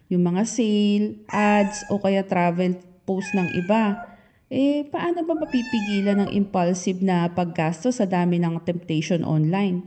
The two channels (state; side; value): identical; both; correlation 1.00